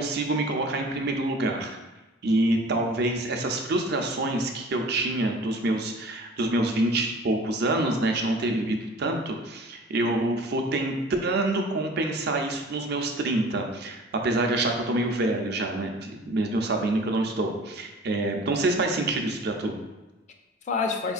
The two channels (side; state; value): both; normal; correlation 0.44